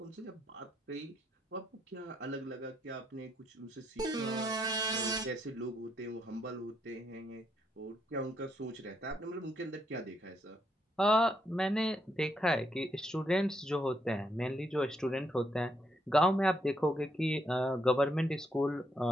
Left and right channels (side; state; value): both; normal; correlation 0.76